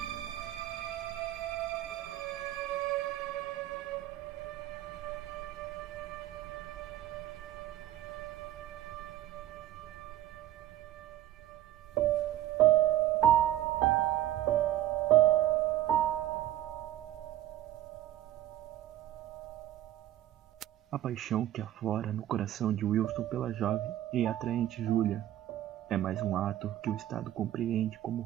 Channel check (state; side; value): quieter; left; 13.2 dB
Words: A paixão que aflora no coração de Wilston pela jovem e atraente Julia é mais um ato que o Estado compreende como